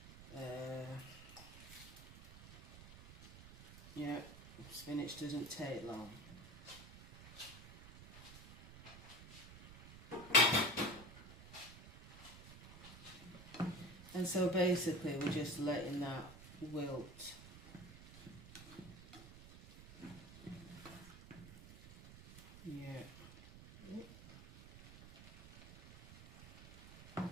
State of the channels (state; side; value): noise; right; rumble, 16 dB below the sound